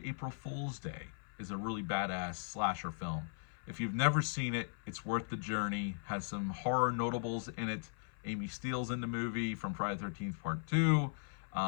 April Fool's Day is a really badass slasher film. If you've never seen it, it's worth the journey. Has some horror notables in it. Amy Steele's in the movie from Friday the 13th Part 2.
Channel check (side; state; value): right; silent; 52 dB below the other